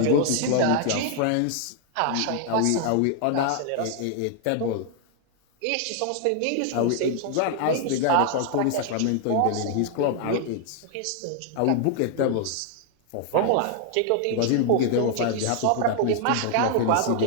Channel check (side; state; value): both; different; correlation 0.00